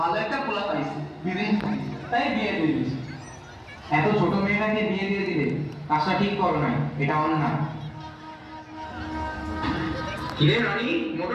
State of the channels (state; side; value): identical; both; correlation 1.00